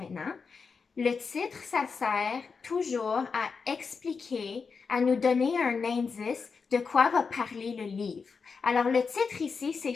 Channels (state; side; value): quieter; right; 5.2 dB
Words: Le titre, ça sert toujours à expliquer, à nous donner un indice de quoi va parler le livre. Alors, le titre ici, c'est